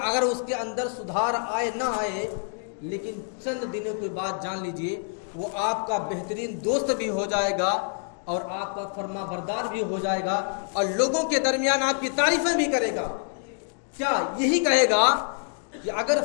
اگر اس کے اندر سدھار آئے نہ آئے، لیکن چند دنوں کے بعد جان لیجئے وہ آپ کا بہترین دوست بھی ہو جائے گا اور آپ کا فرما بردار بھی ہو جائے گا، اور لوگوں کے درمیان آپ کی تعریفیں بھی کرے گا۔ کیا یہی کہے گا کہ اگر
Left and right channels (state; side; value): silent; right; 60 dB below the other